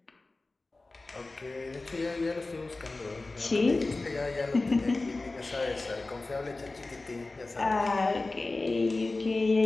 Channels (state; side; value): quieter; right; 3.3 dB